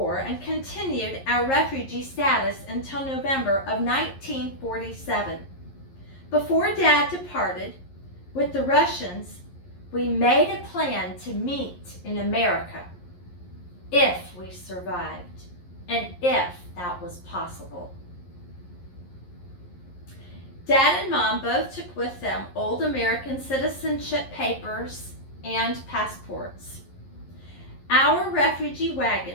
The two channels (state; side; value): late; right; 11 ms